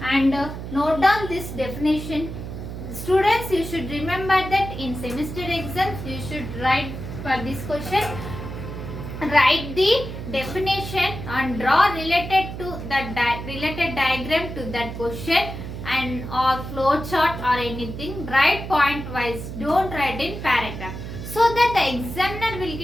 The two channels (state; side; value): noise; right; hum, 8 dB below the sound